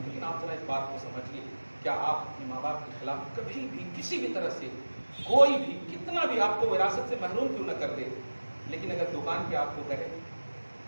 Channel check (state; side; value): inverted; both; correlation -1.00